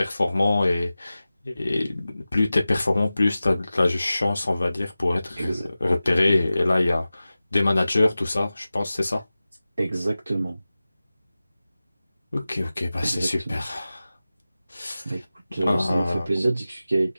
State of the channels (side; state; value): both; inverted; correlation -0.96